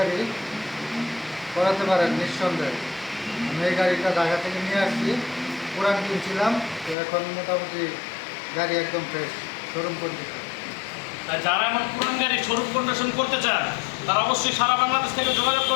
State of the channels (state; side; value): drops out; right; at 7.0 s